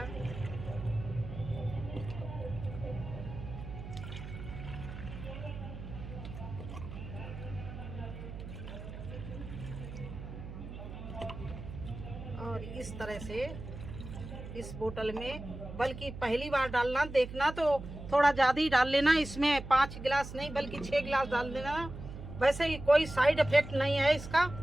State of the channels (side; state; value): right; noise; hum, 10 dB below the sound